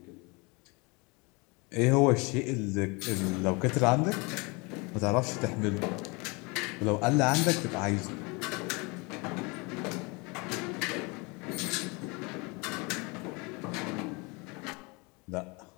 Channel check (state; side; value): quieter; right; 28.3 dB